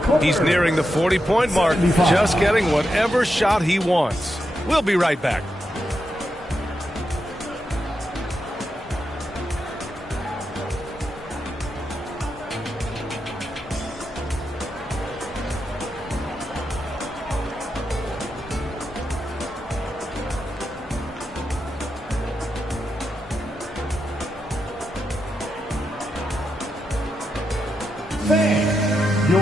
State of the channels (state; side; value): normal; both; correlation 0.85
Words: He's nearing the 40-point mark, just getting whatever shot he wants. We'll be right back.